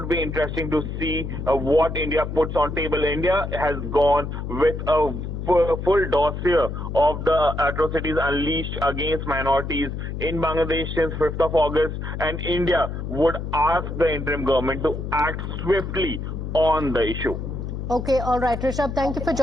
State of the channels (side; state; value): left; noise; hum, 5 dB below the sound